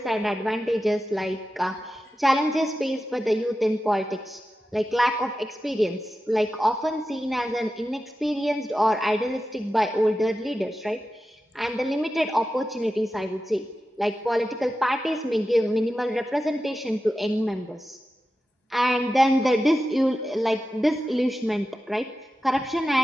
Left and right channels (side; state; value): both; normal; correlation 0.92